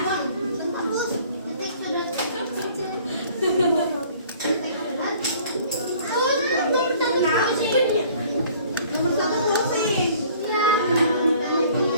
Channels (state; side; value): inverted; both; correlation -0.54